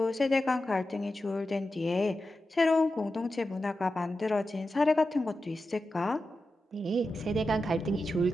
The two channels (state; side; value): normal; both; correlation 0.91